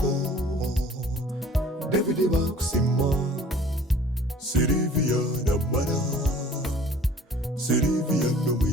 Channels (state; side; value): normal; both; correlation 0.50